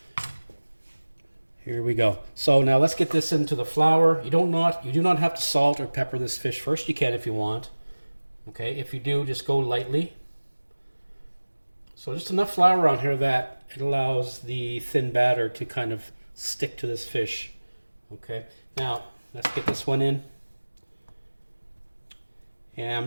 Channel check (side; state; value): both; inverted; correlation -1.00